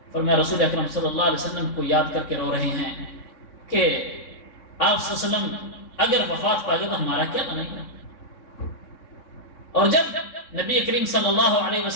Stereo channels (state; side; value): late; right; 3.6 ms